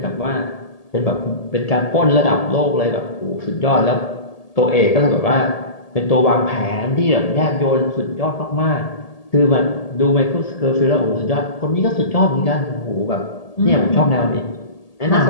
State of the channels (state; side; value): late; right; 1.8 ms